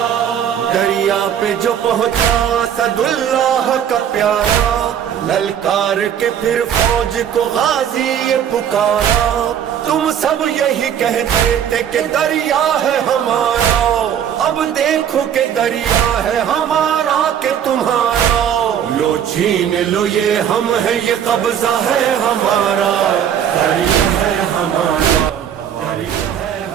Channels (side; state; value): left; quieter; 9.1 dB